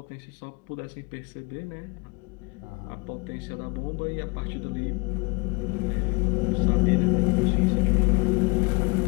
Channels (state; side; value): quieter; right; 27.9 dB